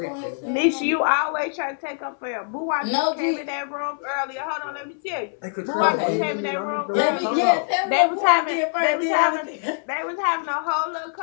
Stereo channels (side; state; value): right; silent; 63 dB below the other